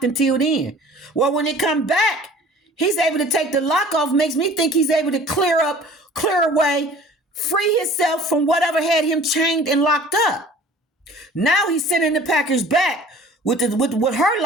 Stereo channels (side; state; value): both; normal; correlation 0.47